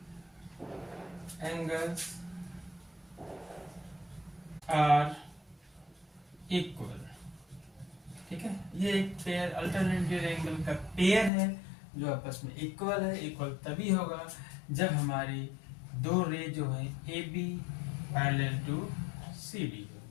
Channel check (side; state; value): right; drops out; at 11.3 s